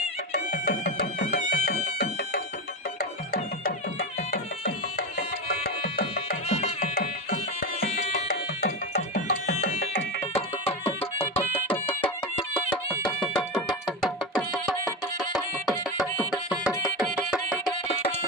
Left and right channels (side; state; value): both; normal; correlation 0.18